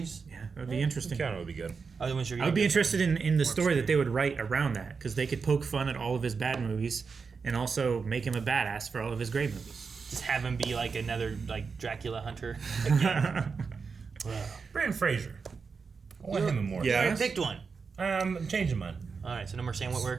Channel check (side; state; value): left; quieter; 5.2 dB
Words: Yeah, that would be interesting. Keanu would be good. I wasn't sure you I would be were- interested in the story that they would write around that, because they could poke fun at all of his bad movies and also make him a badass for all of his great movies. Just have him be like another like Dracula hunter. Brandon Fraser. I want him in more. You already picked one. I'm changing mine. All right, so no more Sam